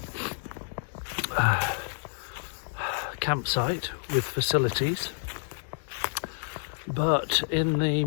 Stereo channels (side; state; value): right; silent; digital silence